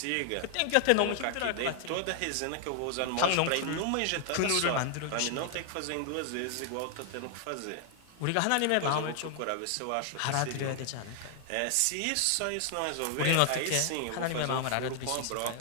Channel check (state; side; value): different; both; correlation 0.00